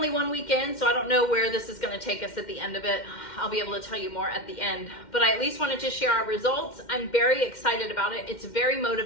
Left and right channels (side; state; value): right; late; 2.1 ms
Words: 1 week in, so I don't know where this is gonna take us at the end of it. I'll be able to tell you more at the end, but I at least wanted to share our results. I'm very excited about it. It's very